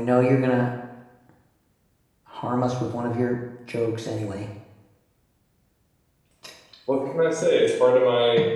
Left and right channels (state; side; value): identical; both; correlation 1.00